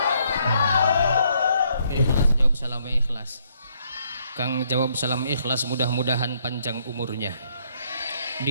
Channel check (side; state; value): both; inverted; correlation -0.71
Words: Ikhlas jawab salamnya ikhlas. Kang jawab salam ikhlas, mudah-mudahan panjang umurnya,